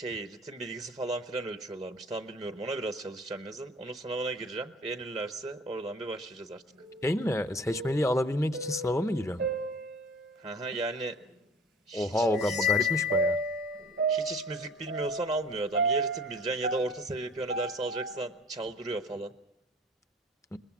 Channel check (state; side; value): normal; both; correlation 0.47